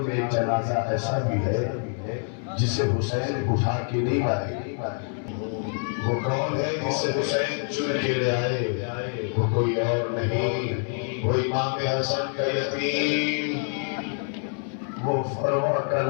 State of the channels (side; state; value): right; silent; 56 dB below the other